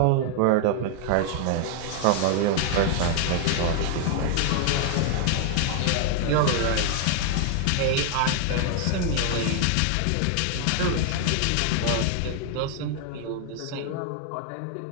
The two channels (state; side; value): different; both; correlation 0.00